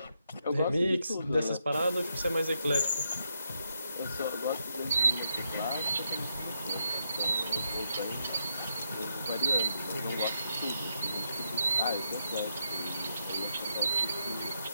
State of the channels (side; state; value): both; inverted; correlation -0.81